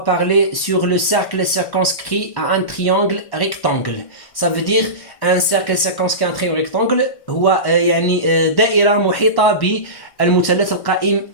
sur le cercle circonscrit à un triangle rectangle. Ça veut dire un cercle circonscrit à un triangle rectangle هو يعني دائرة محيطة بالمثلث القائم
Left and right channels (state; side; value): late; right; 1.1 ms